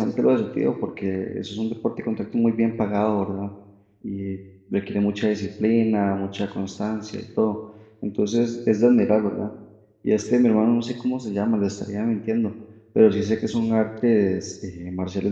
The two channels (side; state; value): both; identical; correlation 1.00